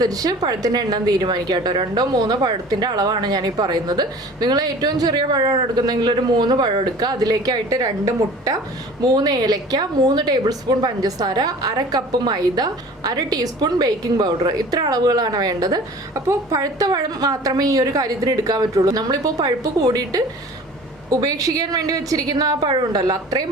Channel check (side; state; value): both; normal; correlation 0.44